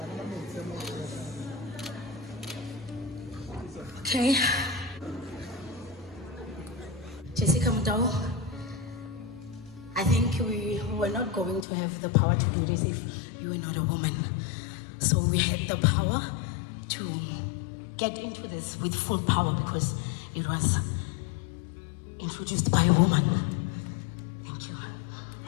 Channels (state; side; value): drops out; right; at 11.7 s